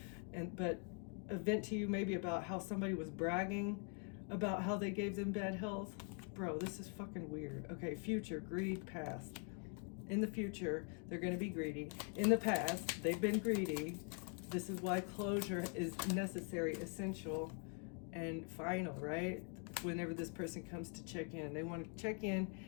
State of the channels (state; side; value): quieter; right; 39.6 dB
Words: but vent to you maybe about how somebody was bragging about how they gave them bad health. Bro, this is fucking weird. Okay, future, greed, past. In the future, they're going to be greedy. In the past, they've been greedy. This is why closure is necessary, essential, and final, right? Whenever this person comes to check in, they want to check